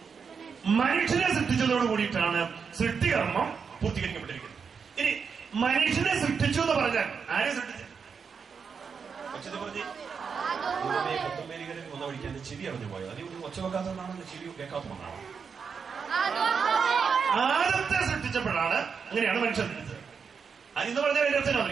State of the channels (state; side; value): quieter; left; 6.0 dB